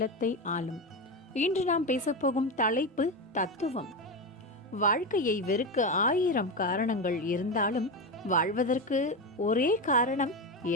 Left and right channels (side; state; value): both; normal; correlation 0.16